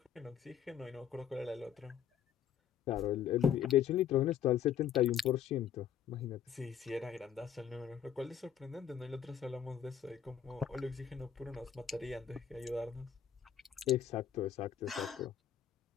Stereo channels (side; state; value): right; quieter; 8.8 dB